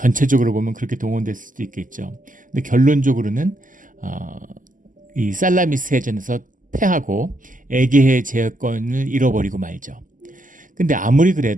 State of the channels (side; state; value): left; late; 0.38 ms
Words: 보면 그렇게 동원됐을 수도 있겠죠. 근데 결론적으로는 이 살라미스 해전에서 패하고 에게해 제어권을 잃어버리고 말죠. 근데 아무리